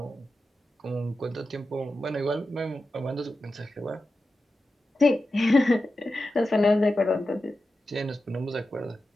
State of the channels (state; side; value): normal; both; correlation 0.92